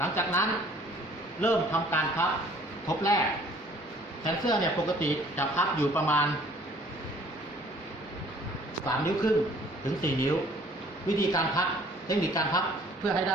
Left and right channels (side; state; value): both; normal; correlation 0.55